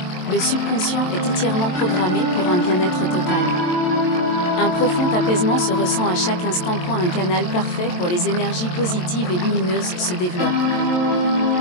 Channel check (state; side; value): late; right; 22 ms